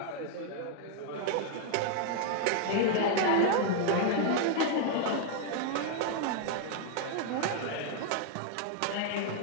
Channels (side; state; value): both; different; correlation 0.00